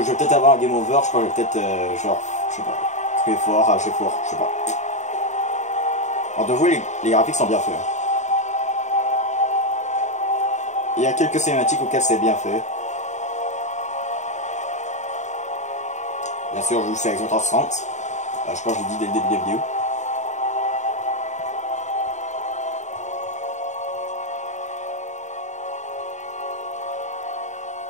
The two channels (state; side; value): late; right; 0.34 ms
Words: peut-être avoir un game over, je crois que je vais peut-être, genre, je sais pas, crier fort, rager fort, je sais pas. Alors de vous, les graphiques sont bien faits. Il y a quelques cinématiques auxquelles c'est bien fait. Bien sûr, je joue sur Xbox 360. Je crois que je l'ai dit dès le début de la vidéo.